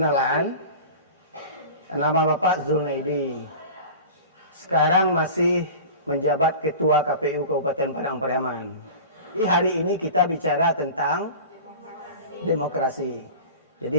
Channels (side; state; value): both; inverted; correlation -0.35